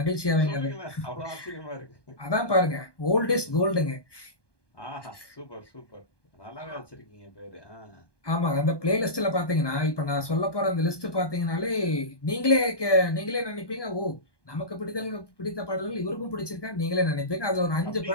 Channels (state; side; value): late; right; 1.2 ms